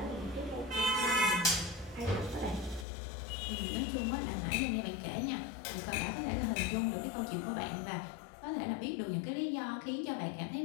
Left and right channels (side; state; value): right; drops out; at 2.9 s